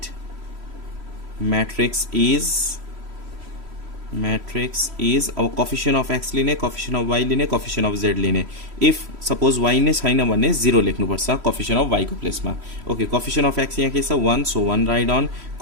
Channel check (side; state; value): left; late; 3.1 ms